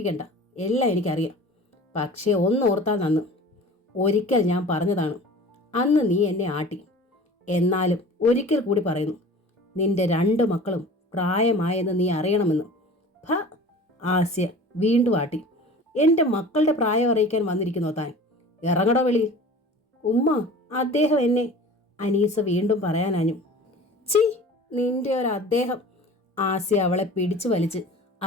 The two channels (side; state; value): both; normal; correlation 0.41